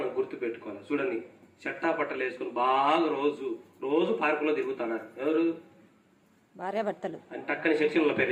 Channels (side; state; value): both; identical; correlation 1.00